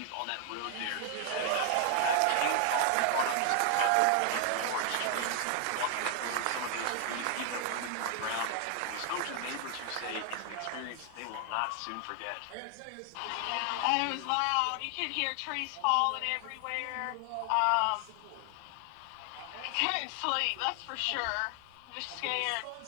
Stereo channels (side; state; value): both; different; correlation 0.00